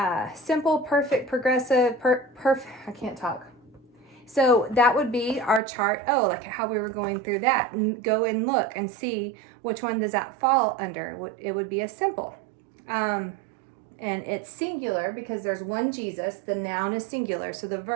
simple, perfect, progressive, perfect? I can't talk. So that would be our chart. Oh, like how we were going through that. And go and look and see which one does that fall under. It would be a simple. And it's singular because there's one Jesus. The noun is singular, so the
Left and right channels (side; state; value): left; drops out; at 5.6 s